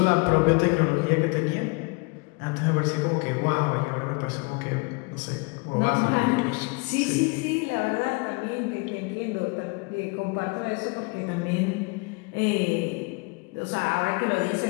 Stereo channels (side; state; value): right; quieter; 29.6 dB